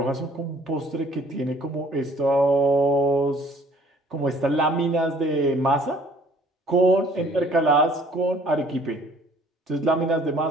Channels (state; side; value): normal; both; correlation 0.56